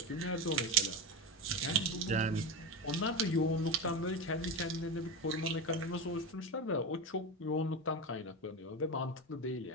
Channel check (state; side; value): normal; both; correlation 0.18